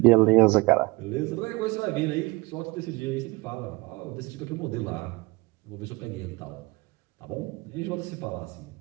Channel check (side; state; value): left; quieter; 24.1 dB